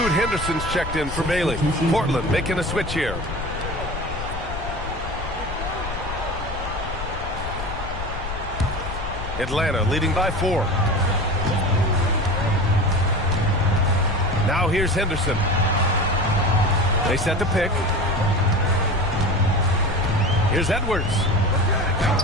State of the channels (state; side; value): noise; left; rumble, 7 dB below the sound